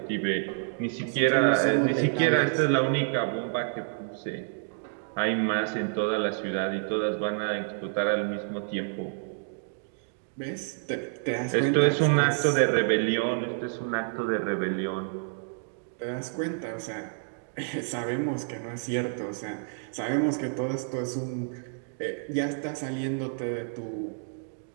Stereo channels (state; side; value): silent; left; digital silence